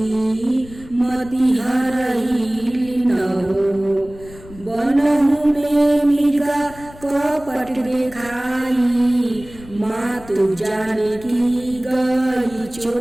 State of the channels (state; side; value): noise; left; rumble, 19 dB below the sound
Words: मति हरही न हो बनहु में मृगा कपट देखाई मातु जाने की गई